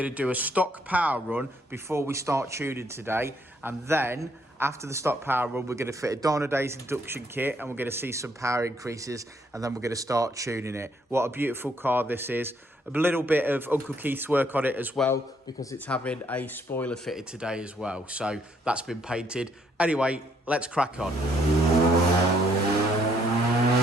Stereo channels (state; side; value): normal; both; correlation 0.69